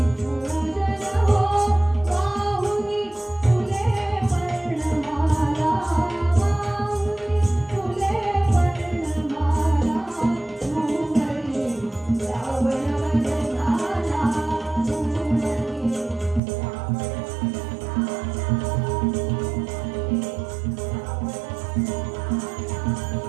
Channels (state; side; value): drops out; left; at 16.4 s